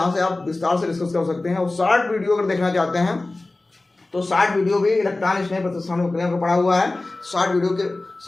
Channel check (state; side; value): quieter; right; 3.0 dB